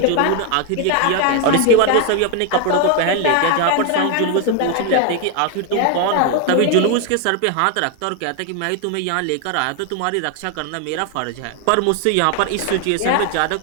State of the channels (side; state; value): both; different; correlation 0.00